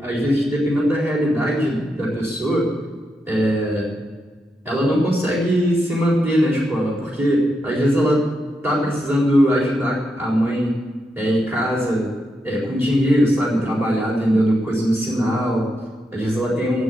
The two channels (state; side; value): normal; both; correlation 0.84